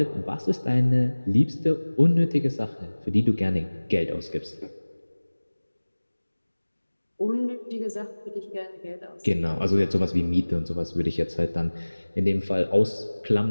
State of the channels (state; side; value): inverted; both; correlation -1.00